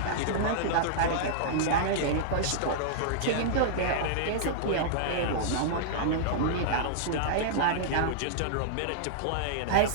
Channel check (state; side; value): different; both; correlation -0.02